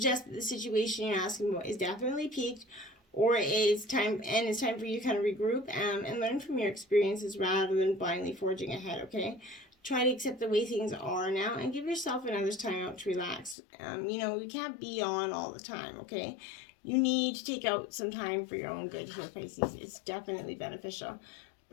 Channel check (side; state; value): right; drops out; at 13.6 s